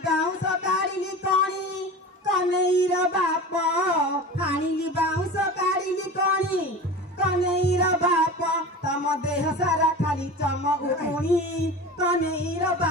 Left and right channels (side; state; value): both; normal; correlation 0.33